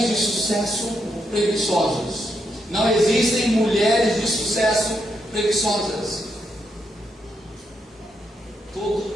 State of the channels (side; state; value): both; normal; correlation 0.80